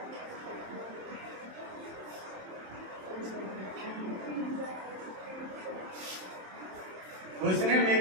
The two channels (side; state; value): left; late; 27 ms